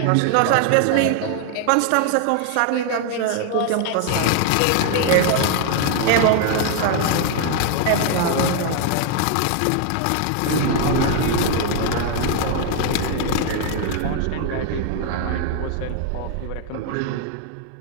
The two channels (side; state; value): both; different; correlation 0.00